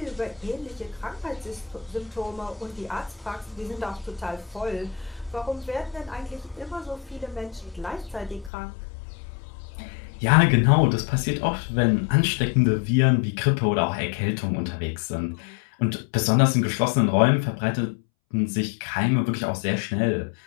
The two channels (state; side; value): drops out; right; at 8.5 s